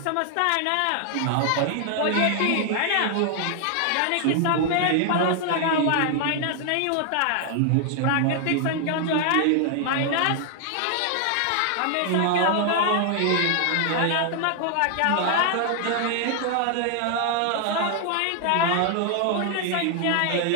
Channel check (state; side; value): different; both; correlation 0.00